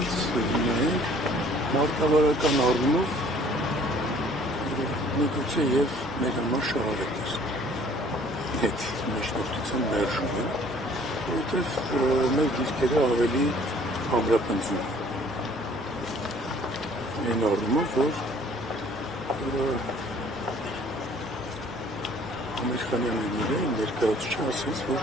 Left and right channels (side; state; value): both; normal; correlation 0.56